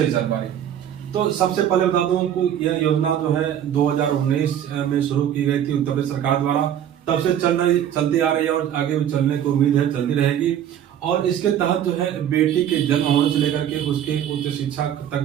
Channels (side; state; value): left; quieter; 10.1 dB